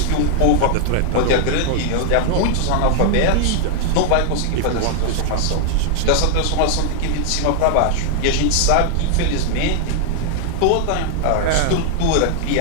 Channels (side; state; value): both; different; correlation -0.01